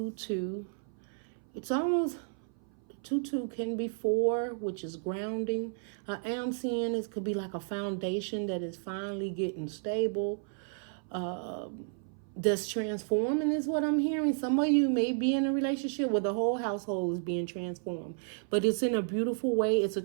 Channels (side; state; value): left; silent; 56 dB below the other